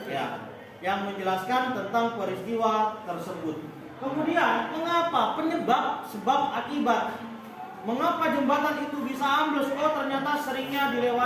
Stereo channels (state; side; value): identical; both; correlation 1.00